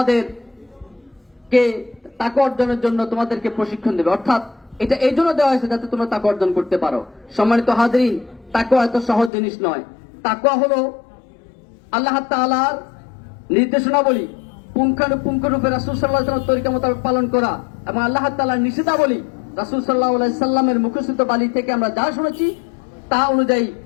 তাকওয়া অর্জনের জন্য তোমাদেরকে প্রশিক্ষণ দেবে, অর্থাৎ এটা এই জন্য দেওয়া হয়েছে যাতে তোমরা তাকওয়া অর্জন করতে পারো। সম্মানিত হাজরিন, তাকওয়া এত সহজ জিনিস নয়। তাকওয়া হলো আল্লাহ তাআলার নির্দেশনাবলী পুঙ্খানুপুঙ্খরূপে রাসূল সাল্লাল্লাহু আলাইহি ওয়াসাল্লামের তরিকা মোতাবেক পালন করা এবং আল্লাহ তাআলার নিষেধাবলী রাসূল সাল্লাল্লাহু আলাইহি সাল্লামের মুখস্থিত বাণী থেকে আমরা যা শুনেছি তা অনুযায়ী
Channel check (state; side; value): drops out; right; at 9.3 s